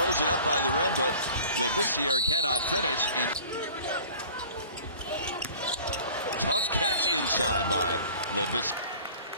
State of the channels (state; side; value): inverted; both; correlation -0.46